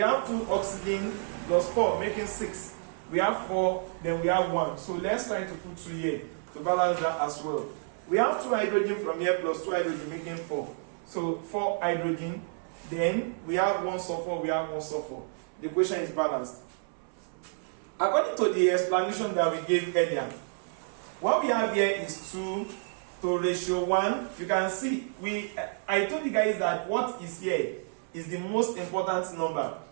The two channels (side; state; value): left; silent; 58 dB below the other